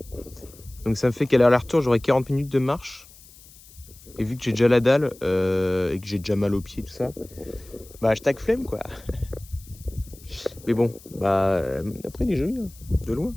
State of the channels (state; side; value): noise; left; hiss, 23 dB below the sound